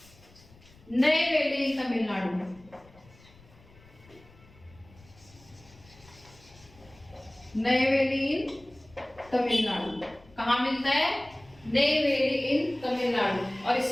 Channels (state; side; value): noise; left; rumble, 25 dB below the sound